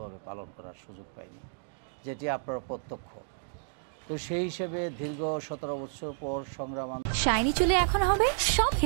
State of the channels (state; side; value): silent; left; digital silence